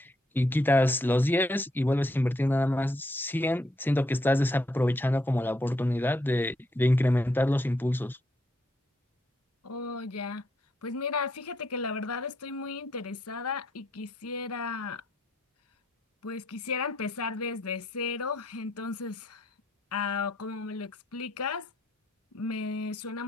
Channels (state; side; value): normal; both; correlation 0.74